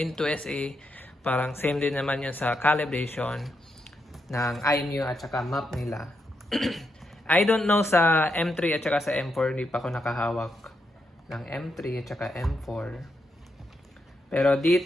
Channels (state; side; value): normal; both; correlation 0.82